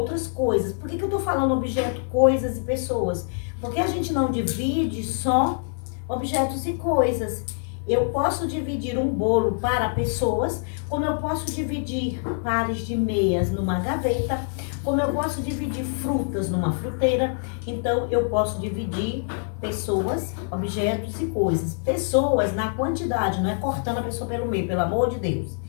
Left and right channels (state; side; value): silent; right; 56 dB below the other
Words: coisas. Por que eu tô falando objeto, coisas e pessoas? Porque a gente não divide só objetos e coisas. Eu posso dividir um bolo para pessoas, como eu posso dividir pares de meias numa gaveta, como eu posso dividir frutas numa fruteira. Então, eu posso dividir pessoas, objetos e coisas. Pessoas na quantidade, não é cortando a pessoa pelo meio, pelo amor de Deus,